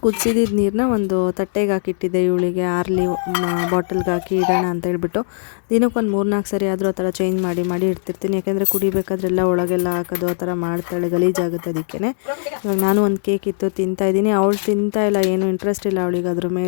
ಕುದಿಸಿದ ನೀರನ್ನ ಒಂದು ತಟ್ಟೆಗೆ ಹಾಕಿಟ್ಟಿದ್ದೆ ಇವಳಿಗೆ, ಆರ್ಲಿ ಬಾಟಲ್ಗೆ ಹಾಕಿ ಇಡೋಣ ಅಂತ ಹೇಳ್ಬಿಟ್ಟು. ದಿನಕ್ಕೊಂದು 3-4 ಸರಿ ಆದರೂ ಆ ಥರ ಚೇಂಜ್ ಮಾಡಿ ಇಡ್ತಿರ್ತೀನಿ. ಯಾಕೆಂದರೆ ಕುಡಿಬೇಕಾದ್ರೆಲ್ಲ ಒಳಗೆಲ್ಲ ಹಾಕೋದು ಆ ಥರ ಮಾಡ್ತಾಳೆ, ಗಲೀಜಾಗುತ್ತೆ. ಅದಕ್ಕೆ ಇವಾಗ ನಾನು ಒಂದು ಕೇಕ್ ಇತ್ತು ತಿಂತಾಯಿದ್ದೀನಿ. ಅವಳು ತಿಂತಾಯಿಲ್ಲ, ಏನೂ ಇಂಟ್ರೆಸ್ಟ್ ಇಲ್ಲ ಅವಳಿಗೆ ಅದ್ರ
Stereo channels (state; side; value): silent; right; 64 dB below the other